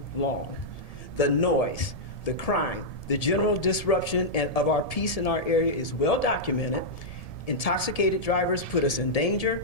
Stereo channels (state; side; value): late; right; 1.7 ms